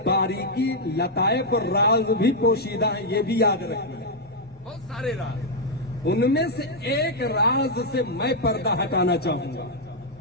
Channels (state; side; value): normal; both; correlation -0.02